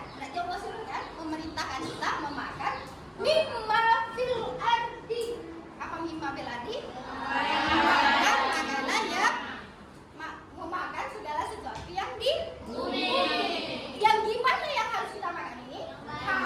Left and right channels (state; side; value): identical; both; correlation 1.00